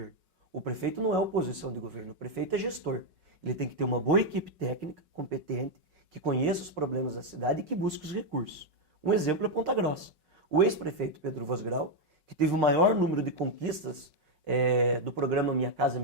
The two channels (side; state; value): left; late; 5.4 ms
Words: O prefeito não é oposição de governo. O prefeito é gestor. Ele tem que ter uma boa equipe técnica, competente, que conheça os problemas da cidade e que busque os recursos. Um exemplo é Ponta Grossa. O ex-prefeito Pedro Vosgrau, que teve o maior número de conquistas do programa Minha Casa